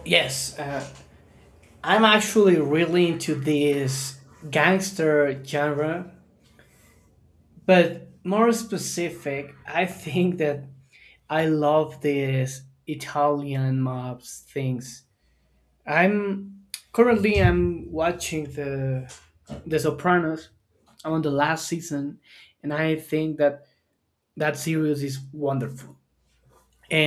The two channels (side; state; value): both; identical; correlation 1.00